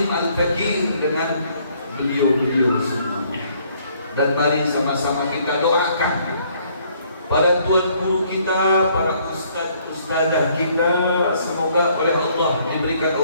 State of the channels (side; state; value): both; inverted; correlation -0.65